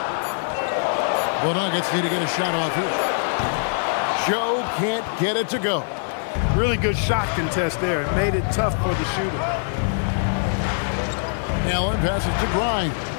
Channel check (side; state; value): right; silent; digital silence